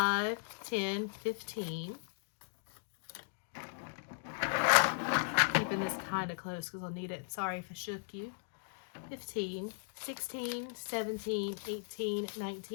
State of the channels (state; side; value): silent; right; digital silence